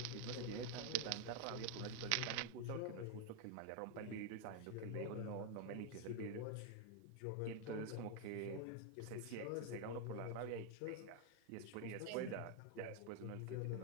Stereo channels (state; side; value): different; both; correlation 0.00